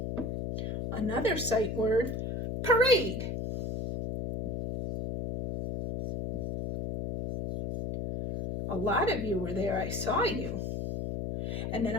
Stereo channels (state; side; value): noise; left; hum, 3 dB below the sound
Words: another sight word, parade. A lot of you were there. I saw you. And then